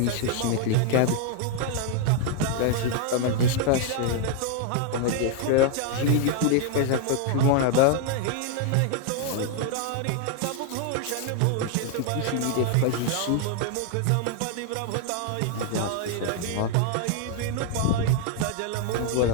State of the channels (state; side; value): different; both; correlation 0.00